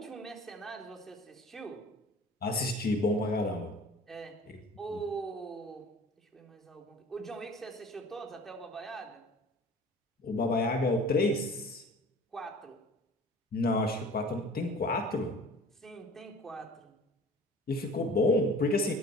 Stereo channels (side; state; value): both; normal; correlation 0.45